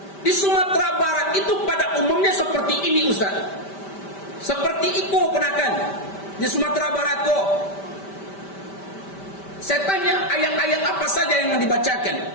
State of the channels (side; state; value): right; late; 5.1 ms